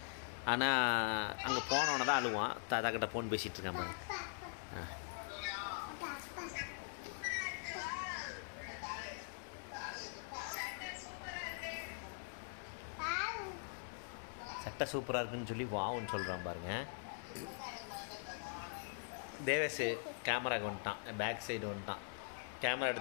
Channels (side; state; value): right; silent; digital silence